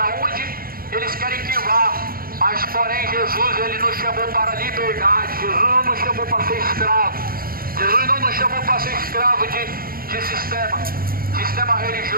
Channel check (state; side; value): late; left; 0.42 ms